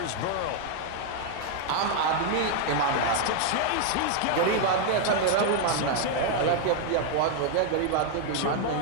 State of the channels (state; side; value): different; both; correlation 0.00